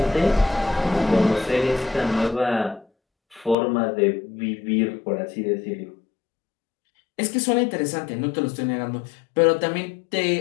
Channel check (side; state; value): right; drops out; at 3.6 s